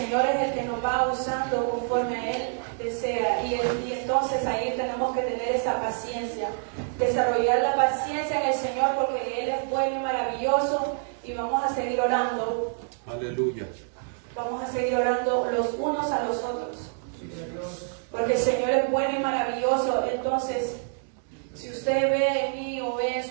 es el que nos va usando conforme a Él desea. Y entonces ahí tenemos que tener esa paciencia, desarrollar la paciencia en el Señor, porque Él es bueno y maravilloso. Y vamos a seguir orando. Aleluya. Vamos a seguir orando los unos a los otros, porque el Señor es bueno y maravilloso. Entonces, si usted ve en mí o ve en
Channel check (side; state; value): left; silent; digital silence